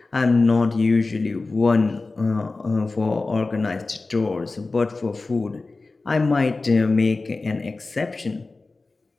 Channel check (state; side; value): quieter; right; 3.6 dB